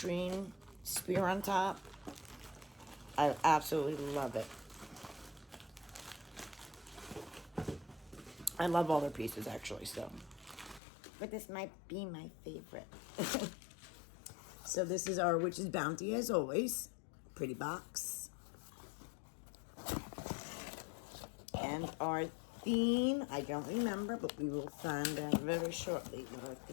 spear on top. I absolutely love it. I love all their pieces, actually, so. But this might be my favorite. So this is our Witch's Bounty, as always. Pretty box. And our theme, I don't remember, but we will find out very shortly what our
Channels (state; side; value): drops out; right; at 10.8 s